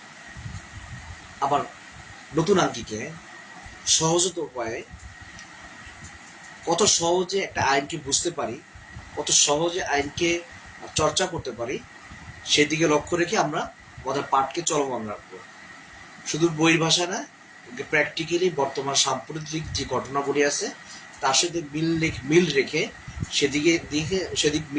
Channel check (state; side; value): identical; both; correlation 1.00